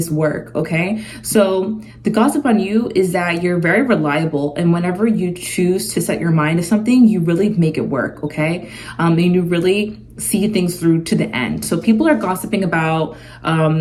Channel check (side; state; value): both; identical; correlation 1.00